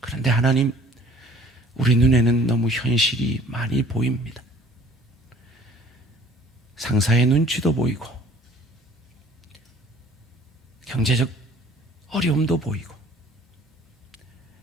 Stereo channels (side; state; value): both; normal; correlation 0.53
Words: 하나님, 우리 눈에는 너무 현실이 많이 보입니다. 상사의 눈치도 보이고 경제적 어려움도 보이고